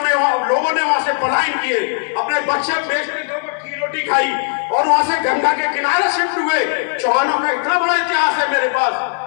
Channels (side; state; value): right; silent; 68 dB below the other